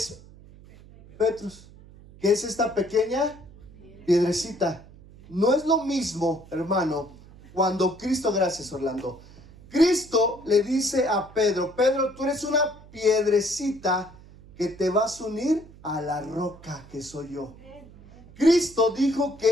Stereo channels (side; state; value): right; noise; hum, 21 dB below the sound